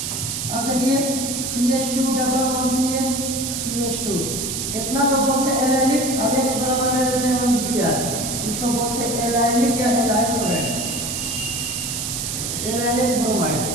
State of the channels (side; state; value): right; noise; hiss, 3 dB below the sound